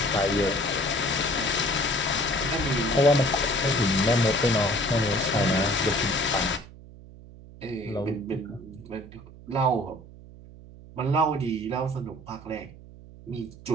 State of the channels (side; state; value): right; noise; hum, 19 dB below the sound